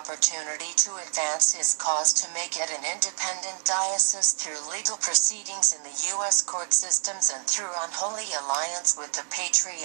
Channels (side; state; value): left; silent; 60 dB below the other